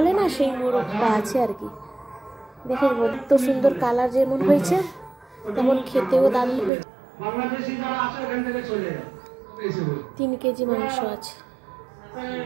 না, সেই মুরগটা আছে আর কি। দেখুন এত সুন্দর কালার যেমন হয়েছে তেমন খেতেও দারুণ হয়েছে। 3 কেজি মাংস আছে।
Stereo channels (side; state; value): left; drops out; at 6.7 s